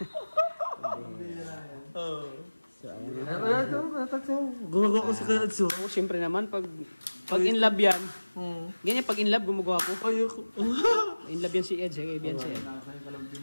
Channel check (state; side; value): inverted; both; correlation -1.00